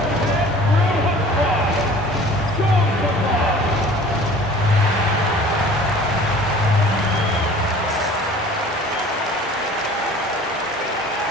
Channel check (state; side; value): normal; both; correlation 0.46